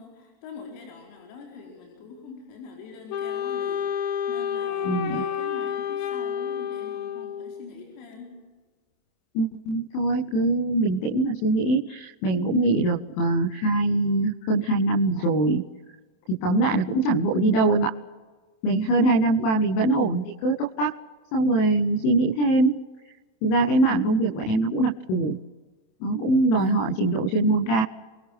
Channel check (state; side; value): late; right; 27 ms